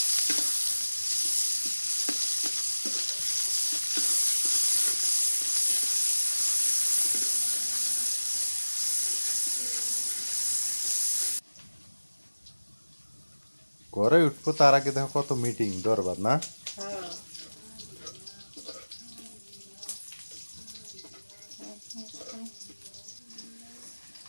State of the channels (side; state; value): both; inverted; correlation -1.00